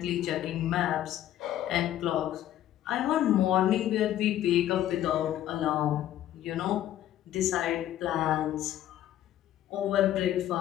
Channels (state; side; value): quieter; right; 12.4 dB